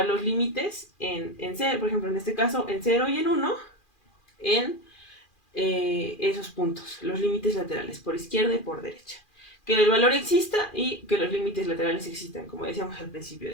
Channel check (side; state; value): right; late; 2.4 ms